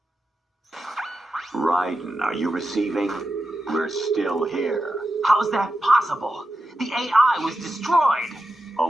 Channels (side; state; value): both; normal; correlation 0.90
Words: Raiden, are you receiving? We're still here. How's that possible? The AI was destroyed.